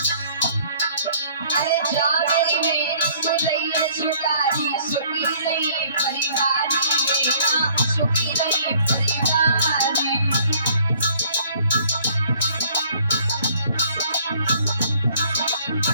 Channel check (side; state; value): both; inverted; correlation -0.58